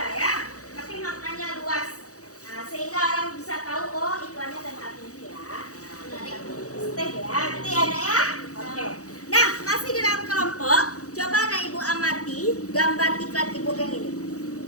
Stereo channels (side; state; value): right; late; 0.66 ms